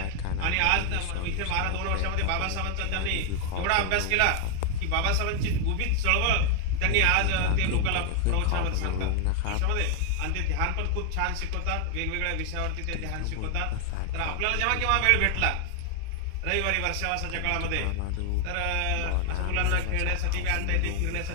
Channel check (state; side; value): different; both; correlation 0.01